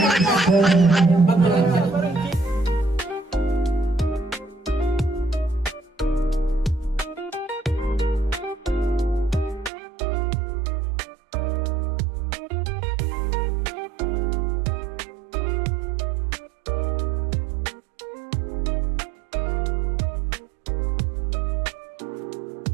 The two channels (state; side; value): drops out; left; at 9.7 s